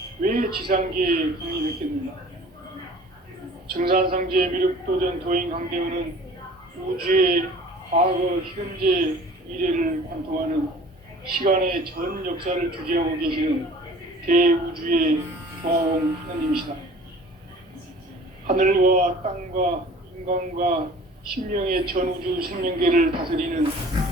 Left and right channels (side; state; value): both; normal; correlation 0.47